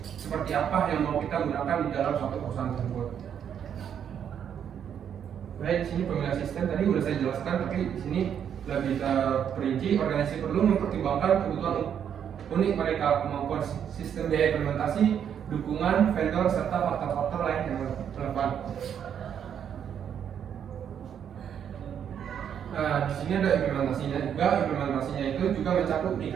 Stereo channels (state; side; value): quieter; left; 8.6 dB